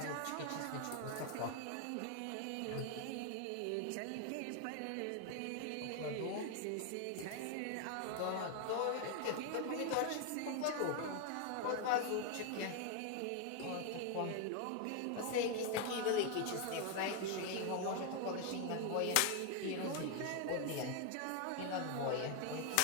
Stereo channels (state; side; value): different; both; correlation 0.01